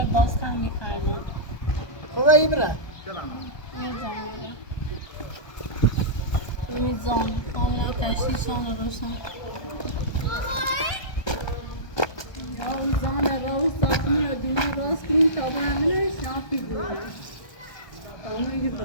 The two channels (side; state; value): right; late; 1.2 ms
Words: باز کم میخردم خوبه ای بره میزان کاملا تشخیصان رو روشن میزان رو ساختمون رو دینا باز کنیم تا به همینش نافی بودیم تا میگی